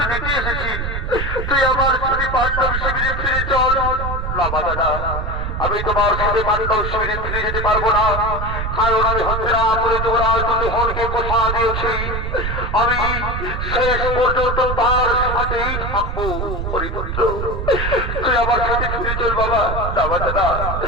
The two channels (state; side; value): noise; right; rumble, 3 dB below the sound